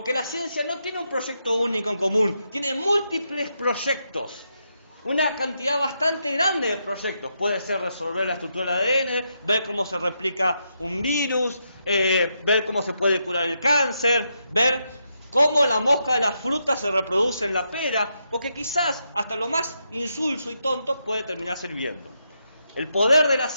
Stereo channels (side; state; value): both; inverted; correlation -0.82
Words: la ciencia no tiene un proyecto único en común, tiene múltiples proyectos. Una cantidad bastante grande de proyectos. Puede ser resolver la estructura del ADN, ver cómo se replica un virus, ver cómo se puede curar el cáncer, ver cómo la mosca de la fruta se reproduce en la pera, porque quizás hasta lo más insulso y tonto puede terminar sirviendo. El poder de la